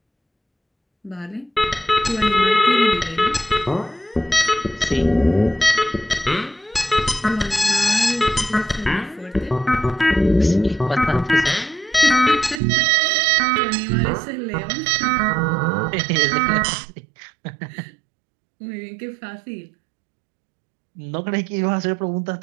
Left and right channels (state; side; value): drops out; left; at 12.6 s